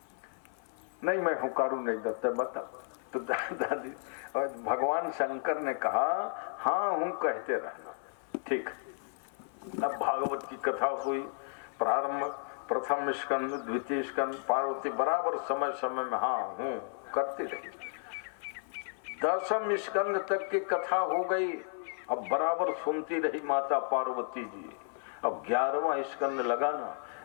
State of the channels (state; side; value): silent; right; 56 dB below the other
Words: नहीं मैं हुकारू नहीं देता बता। तो दादी और भगवान शंकर ने कहा हाँ हूँ कहते रहना, ठीक। अब भागवत की कथा हुई प्रारंभ, प्रथम स्कंद, द्वितीय स्कंद, पार्वती बराबर समय समय में हाँ हूँ करती रही। 10वें स्कंद तक की कथा हो गई, अब बराबर सुनती रही माता पार्वती जी। अब 11वां स्कंद लगाना,